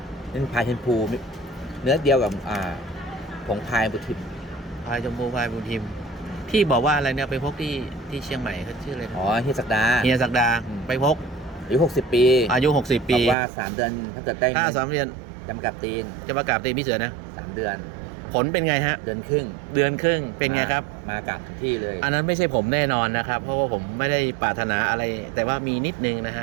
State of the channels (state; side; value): drops out; left; at 13.4 s